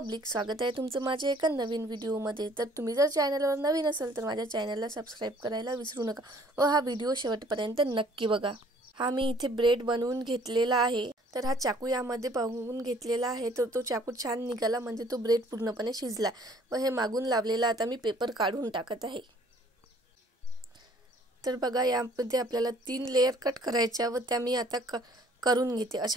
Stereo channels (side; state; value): both; normal; correlation 0.57